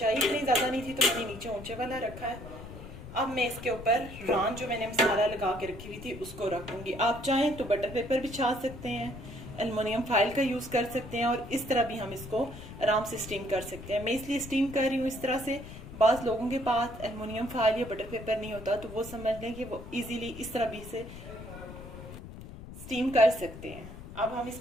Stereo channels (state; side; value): noise; left; rumble, 13 dB below the sound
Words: इतनी ज़्यादा नहीं थी तो मैंने नीचे ऊंचे वाला रखा है। अब मैं इसके ऊपर रान जो मैंने मसाला लगा के रखी हुई थी उसको रख दूँगी। आप चाहें तो बटर पेपर बिछा सकते हैं, एलुमिनियम फाइल का यूज़ कर सकते हैं, और इस तरह भी हम इसको आराम से स्टीम कर सकते हैं। मैं इसलिए स्टीम कर रही हूँ इस तरह से। बाज़ लोगों के पास एलुमिनियम फाइल या बटर पेपर नहीं होता, तो वो समझ लें कि वो इजीली इस तरह भी से स्टीम कर सकते हैं। अब हम